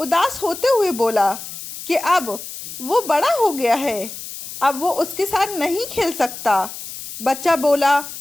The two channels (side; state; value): left; noise; hiss, 11 dB below the sound